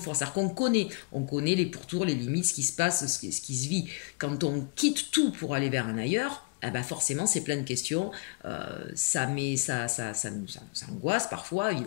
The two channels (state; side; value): quieter; right; 32.9 dB